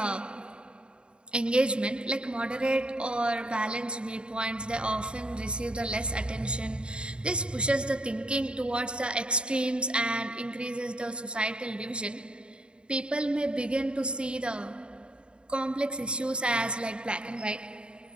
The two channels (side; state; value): left; late; 0.053 ms